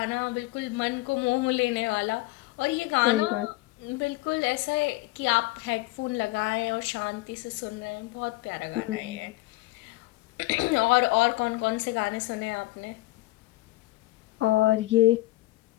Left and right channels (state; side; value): quieter; right; 19.8 dB